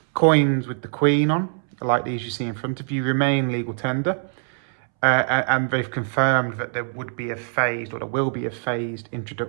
coins with the Queen on, like these you see in front of you, remain legal tender. And they've confirmed that there will be a phased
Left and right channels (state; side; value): silent; left; 63 dB below the other